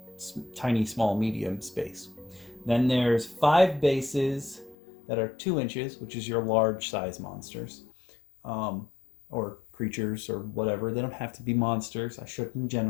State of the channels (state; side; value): drops out; right; at 4.8 s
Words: tiny, small, medium space. Then there's 5 bases that are 2 inches, which is your large size monsters, or creatures or whatever. They don't have to be monsters. I shouldn't